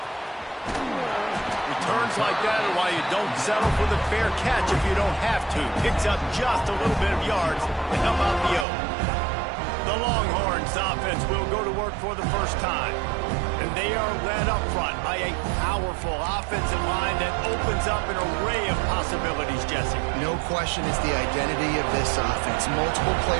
Returns like that are why you don't settle for the fair catch if you don't have to. Picks up just a little bit of yards to help out the Oak. The Longhorns offense will go to work for the first time. And they are led up front by a powerful offensive line that opens up an array of possibilities, Jesse. No question it's the identity of this offense. Multiple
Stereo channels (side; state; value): left; drops out; at 8.7 s